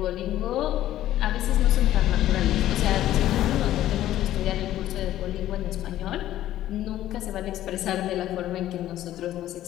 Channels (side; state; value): right; quieter; 13.3 dB